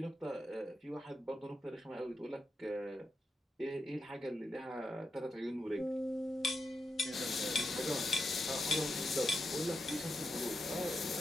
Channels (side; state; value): both; normal; correlation 0.86